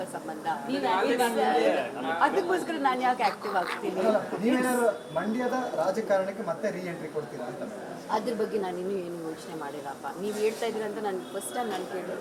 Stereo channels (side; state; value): both; identical; correlation 1.00